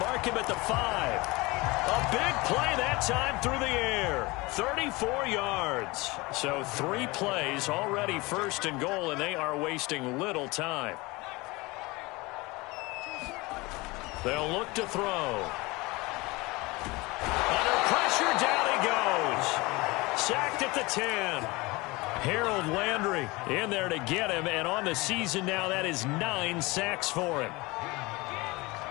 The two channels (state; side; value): quieter; right; 23.2 dB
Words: him at the 5. A big play that time through the air. 34 yards. So 3 plays already 1st and goal, and they are wasting little time. They'll look to throw. Under pressure, down he goes. Sacked at the 10. Harold Landry in there to get him, and on the season now, that is 9 sacks for him.